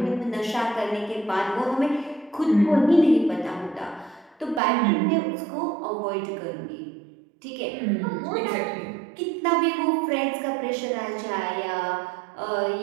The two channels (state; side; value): drops out; left; at 4.6 s